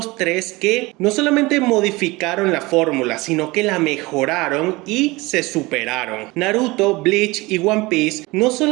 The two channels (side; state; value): left; quieter; 22.4 dB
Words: tres que no solamente modificaron la fórmula, sino que la mejoraron y se superaron. Naruto, Bleach y One Piece no